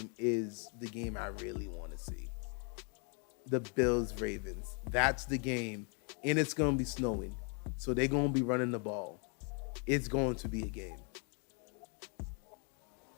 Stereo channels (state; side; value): quieter; right; 38.6 dB